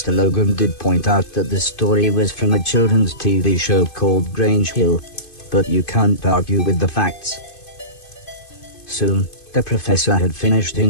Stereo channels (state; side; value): late; right; 2.5 ms